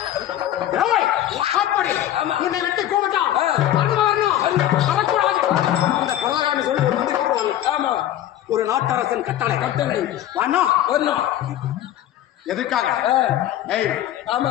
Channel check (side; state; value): right; quieter; 12.5 dB